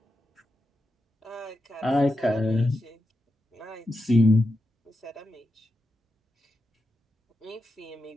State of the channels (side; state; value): both; normal; correlation 0.88